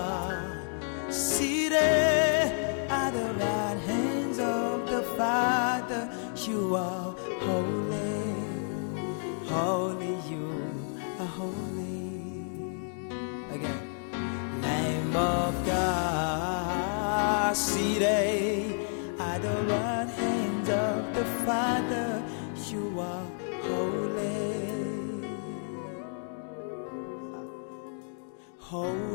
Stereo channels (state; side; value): silent; right; 58 dB below the other